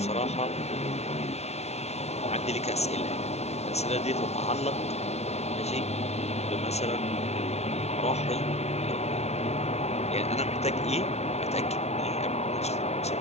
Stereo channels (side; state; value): right; late; 0.31 ms